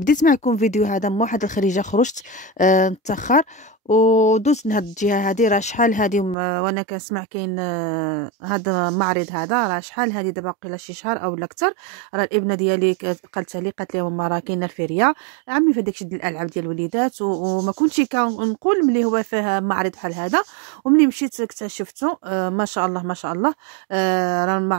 معكم فيديو هذا من واحد الخريجه، خرجت متاخر ودوزت من هاد الجهه هادي. راه شحال هادي وانا كنسمع كاين هذا المعرض هذا، راه شحال هادي دابا قيله شي شهر او اكثر. راه الابنه ديالي قالتها لي، قالت لي ماما راه كاينه الفيريا عمي في داكشي ديال الالعاب ديال الوليدات، وما كنتش كنقول ملي هو فيه معرض بحال هذا. وملي مشيت اكتشفته، ما شاء الله ما شاء الله. راه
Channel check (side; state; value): left; drops out; at 6.4 s